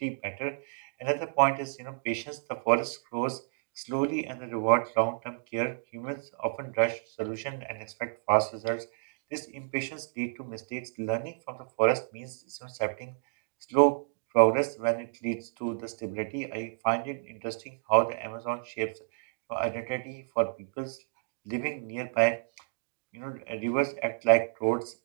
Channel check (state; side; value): silent; left; digital silence